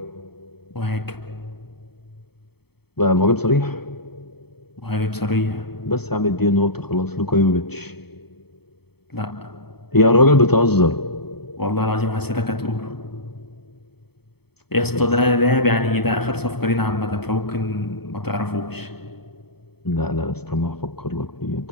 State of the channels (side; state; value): right; late; 0.97 ms